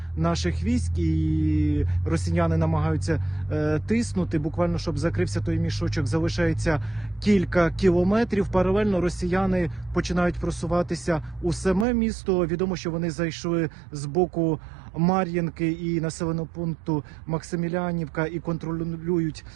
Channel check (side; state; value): left; drops out; at 11.9 s